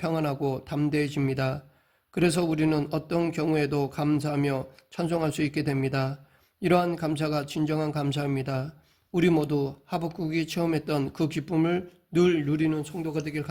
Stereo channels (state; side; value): identical; both; correlation 1.00